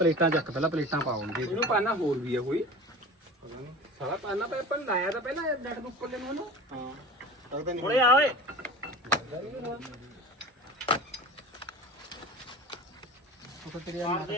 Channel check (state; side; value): normal; both; correlation 0.35